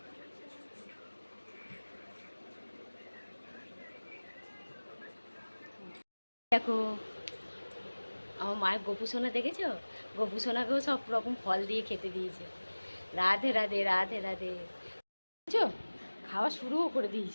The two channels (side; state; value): both; inverted; correlation -1.00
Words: দেখো আমার মায়ের গোপু সোনা দেখেছো? গোপু সোনাকেও সব রকম ফল দিয়ে খেতে দিয়েছে। রাধে রাধে রাধে রাধে। বুঝছো, খাওয়া শুরুও করে